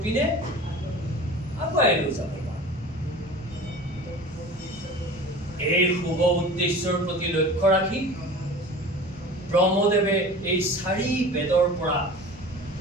পিনে আগুৱাই লৈ যাব পাৰোঁ। এই শুভ উদ্দেশ্যৰ প্ৰতি লক্ষ্য ৰাখি ব্ৰহ্মদেৱে এই 4 বেদৰ পৰা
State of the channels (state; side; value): noise; right; hum, 23 dB below the sound